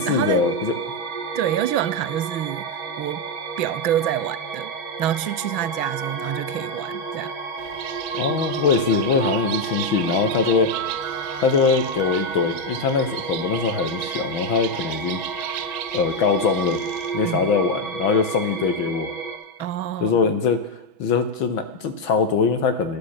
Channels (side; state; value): right; late; 6.2 ms